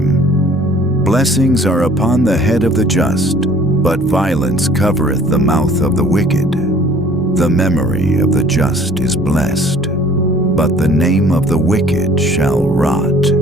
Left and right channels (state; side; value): noise; right; rumble, 20 dB below the sound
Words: Blessings are upon the head of the just, but violence covereth the mouth of the wicked. The memory of the just is blessed, but the name of the wicked shall rot.